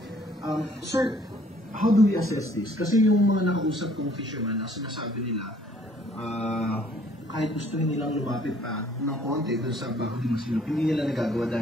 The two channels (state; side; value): normal; both; correlation 0.60